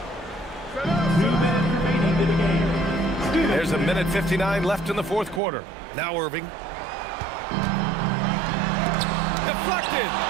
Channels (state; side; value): drops out; left; at 5.4 s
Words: 2 minutes remaining in the game. There's a minute 59 left in the fourth quarter. Now Irving. Deflected.